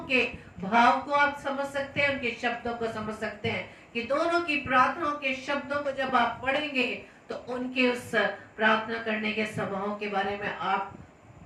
के भाव को आप समझ सकते हैं, उनके शब्दों को समझ सकते हैं कि दोनों की प्रार्थनाओं के शब्दों को जब आप पढ़ेंगे तो उनके उस प्रार्थना करने के स्वभाव के बारे में आप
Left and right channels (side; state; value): both; identical; correlation 1.00